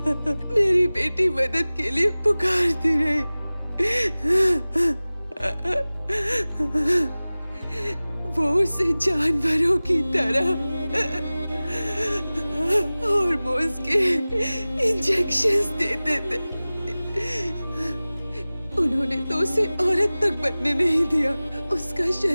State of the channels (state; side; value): inverted; both; correlation -0.98